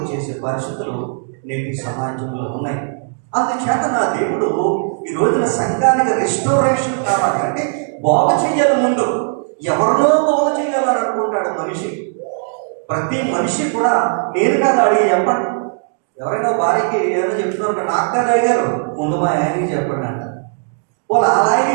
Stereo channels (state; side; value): silent; left; digital silence